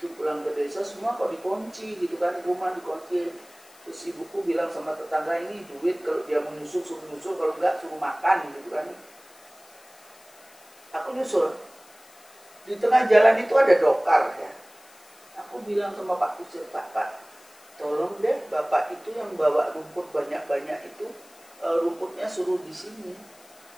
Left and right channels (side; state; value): left; noise; hiss, 25 dB below the sound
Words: pulang ke desa semua kok dikunci gitu kan, rumah dikunci. Terus ibuku bilang sama tetangga, ini duit, kalau dia mau nyusul suruh nyusul, kalau enggak suruh makan gitu kan. Aku nyusul. Di tengah jalan itu ada dokar ya. Aku bilang sama Pak Kusir, Pak, tolong deh Bapak itu yang bawa rumput banyak-banyak itu, rumputnya suruh di sini.